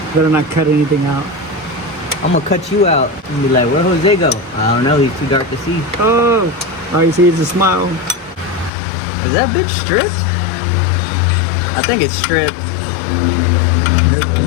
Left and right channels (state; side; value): drops out; right; at 8.7 s